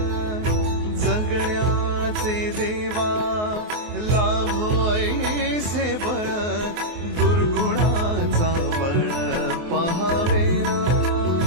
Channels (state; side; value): late; left; 24 ms